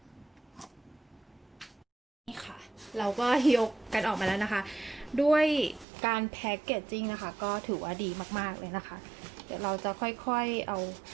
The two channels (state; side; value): drops out; left; at 5.9 s